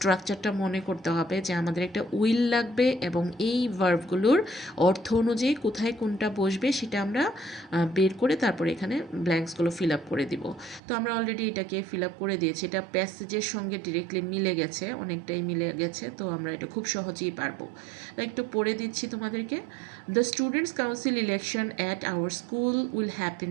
মনে করতে হবে যে আমাদের একটা উইল লাগবে এবং এই ভার্বগুলোর অর্থ অনুযায়ী কোথায় কোনটা বসবে সেটা আমরা বের করে তারপরে এখানে ব্ল্যাঙ্কসগুলো ফিল আপ করে দিব। তো আমরা অলরেডি এটাকে ফিল আপ করে দিয়েছি, এটা প্যাসেজের সঙ্গে ডিরেক্টলি মিলে গেছে, অনেকটাই মিলে গেছে, তো আমরা এটা খুব সহজেই পারবো। একটু পড়ে দিচ্ছি তোমাদেরকে। The students council election at our school will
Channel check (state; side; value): drops out; left; at 10.8 s